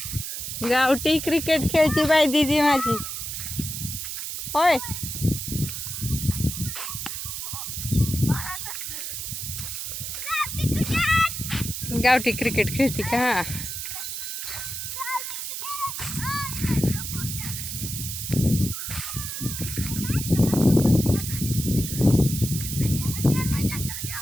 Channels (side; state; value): right; noise; hiss, 5 dB below the sound